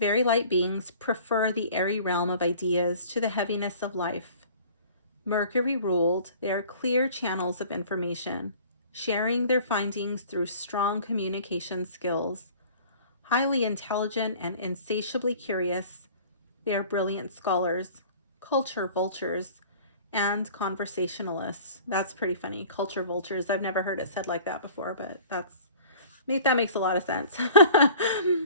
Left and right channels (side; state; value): both; inverted; correlation -0.48